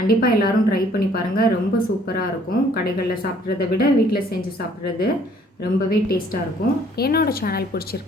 எல்லோரும் ட்ரை பண்ணி பாருங்கள். ரொம்ப சூப்பராக இருக்கும். கடைகளில் சாப்பிட்றத விட வீட்டில் செஞ்சு சாப்பிட்றது ரொம்பவே டேஸ்ட்டாக இருக்கும். என்னோடய சேனல்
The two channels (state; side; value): normal; both; correlation 0.60